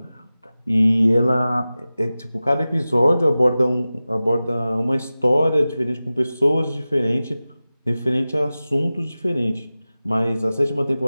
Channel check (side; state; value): both; inverted; correlation -0.96